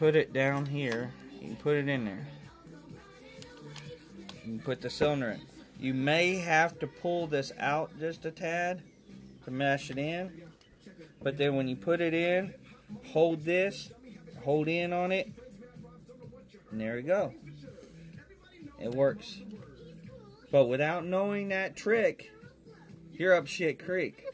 it down here. You can put it in there. You can put the cylinder in. You may have to pull this out just a tad to mesh it in. But then when you put it in, hold this, hold in on it, and there you go. It works. But without knowing that trick, you're up shit creek.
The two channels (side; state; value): both; identical; correlation 1.00